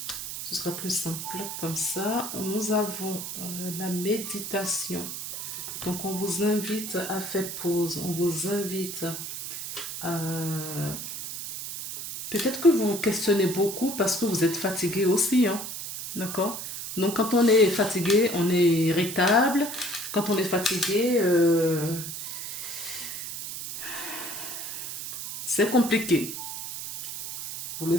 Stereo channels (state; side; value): noise; right; hiss, 7 dB below the sound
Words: Ce sera plus simple comme ça. Nous avons la méditation. Donc on vous invite à faire pause. On vous invite à... Peut-être que vous vous questionnez beaucoup parce que vous êtes fatigué aussi. Hein? D'accord? Donc quand on est fatigué, on est irritable. Quand on est fatigué... c'est compliqué. Vous le